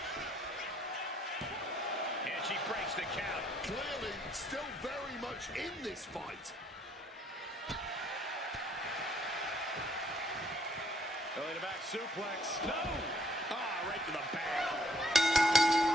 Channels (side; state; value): both; normal; correlation 0.66